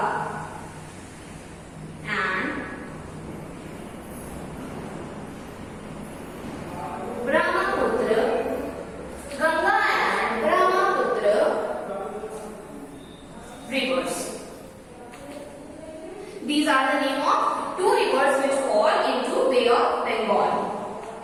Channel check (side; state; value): both; identical; correlation 1.00